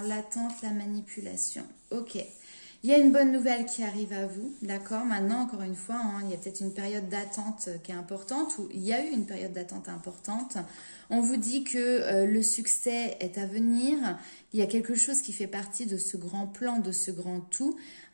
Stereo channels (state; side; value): inverted; both; correlation -1.00